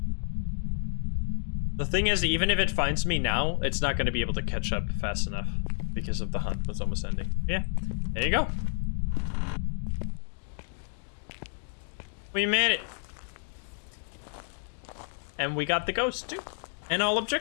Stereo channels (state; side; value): silent; right; 58 dB below the other